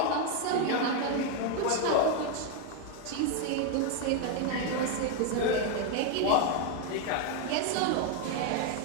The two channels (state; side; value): different; both; correlation 0.01